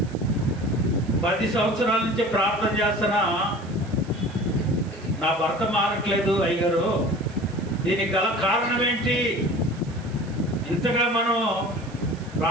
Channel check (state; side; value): noise; right; hiss, 24 dB below the sound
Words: 10 సంవత్సరాల నుంచి ప్రార్థన చేస్తున్నా నా భర్త మారట్లేదు అయ్యగారు, దీనికి గల కారణం ఏంటి? ఇంతగా మనం